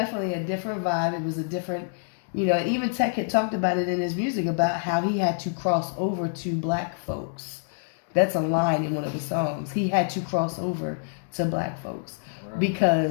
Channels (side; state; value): right; silent; digital silence